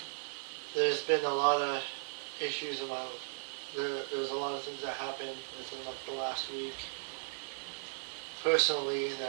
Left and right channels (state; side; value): silent; left; digital silence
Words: there's been a lot of issues about, there's a lot of things that happened within the last week. Personally,